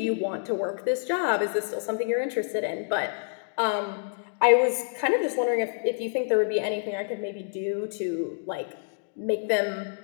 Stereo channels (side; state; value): right; silent; digital silence